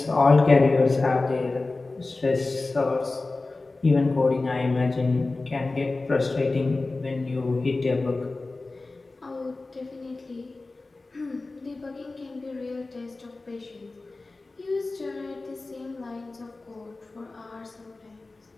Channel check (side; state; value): right; quieter; 3.4 dB